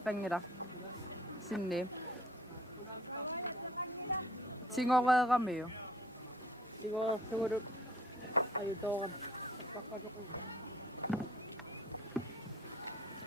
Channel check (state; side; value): normal; both; correlation 0.55